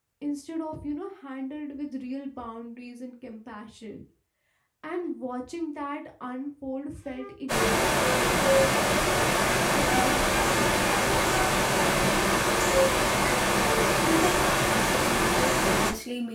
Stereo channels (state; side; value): identical; both; correlation 1.00